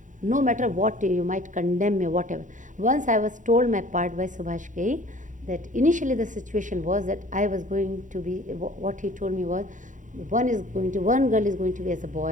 No matter what, you might condemn me, whatever. Once I was told my part by Subhash Ghai, that initially the situation was that I was going to be, what he told me was, one girl is going to be as a boy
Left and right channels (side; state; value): left; late; 0.37 ms